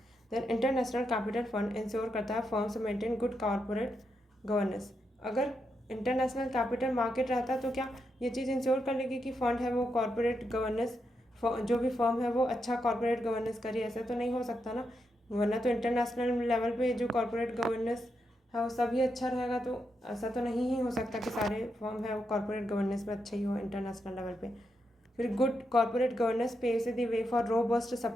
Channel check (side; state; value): both; normal; correlation 0.83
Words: Then international capital fund ensure करता है firms maintain good corporate governance. अगर इंटरनेशनल कैपिटल मार्केट रहता तो क्या ये चीज़ इंश्योर कर लेगी कि फंड है वो कॉर्पोरेट गवर्नेंस, जो भी फर्म है वो अच्छा कॉर्पोरेट गवर्नेंस करे, ऐसा तो नहीं हो सकता ना। वरना तो इंटरनेशनल लेवल पे जो कॉर्पोरेट गवर्नेंस है वो सभी अच्छा रहेगा, तो ऐसा तो नहीं ही हो सकता कि सारे फर्म है वो कॉर्पोरेट गवर्नेंस में अच्छे ही हो इंटरनेशनल लेवल पे। फिर good corporate governance paves the way for robust